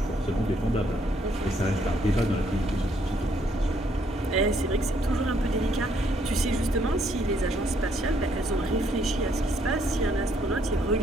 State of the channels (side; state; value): both; normal; correlation 0.69